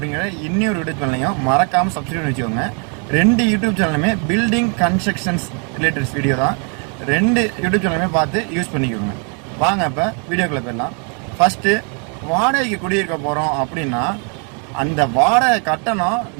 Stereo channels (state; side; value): quieter; left; 38.8 dB